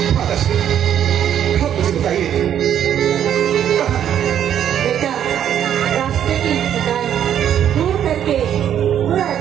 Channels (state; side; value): quieter; left; 9.9 dB